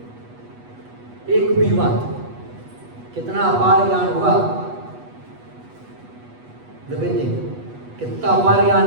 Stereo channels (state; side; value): late; left; 8.2 ms